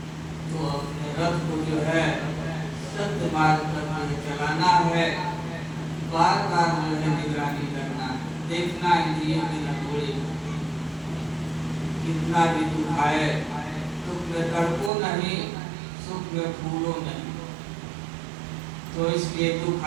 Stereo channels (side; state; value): left; drops out; at 14.9 s